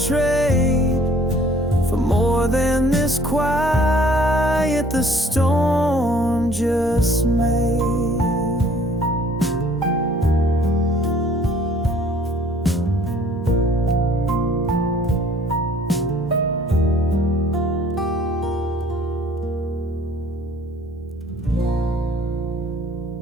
trade for more than this quiet the storm just made.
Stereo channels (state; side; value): normal; both; correlation 0.56